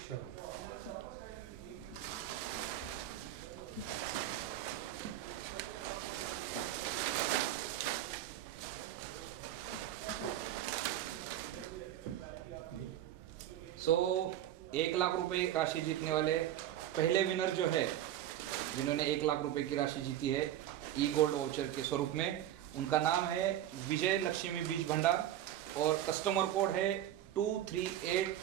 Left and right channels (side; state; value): left; quieter; 12.2 dB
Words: सो 1 लाख रुपए राशि जीतने वाले पहले विनर जो है, जिन्होंने 1 लाख रुपए की राशि जीती है ई गोल्ड वाउचर के स्वरूप में, उनका नाम है विजय लक्ष्मी बीज भंडार और कस्टमर कोड है